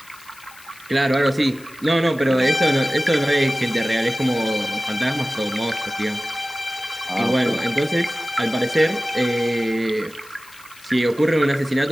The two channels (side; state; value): left; noise; hiss, 22 dB below the sound